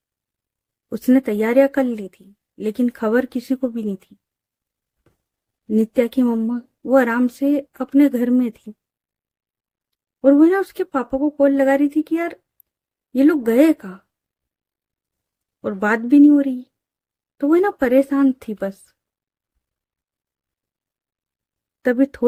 उसने तैयारियां कर ली थी, लेकिन खबर किसी को भी नहीं थी। नित्या की मम्मा वो आराम से अपने घर में थी और वो ना उसके पापा को कॉल लगा रही थी कि यार ये लोग गए कहाँ, और बात भी नहीं हो रही। तो वो ना परेशान थी बस। तभी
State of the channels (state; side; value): identical; both; correlation 1.00